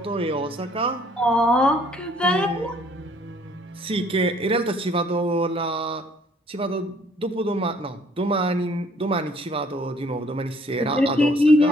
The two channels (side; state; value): both; normal; correlation 0.60